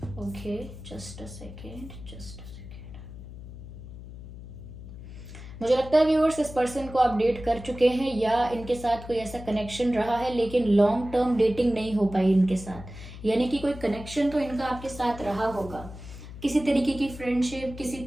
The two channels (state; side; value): noise; left; hum, 13 dB below the sound